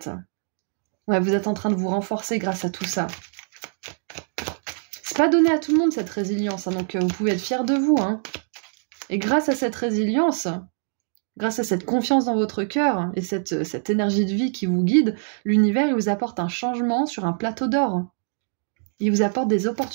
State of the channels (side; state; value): left; silent; digital silence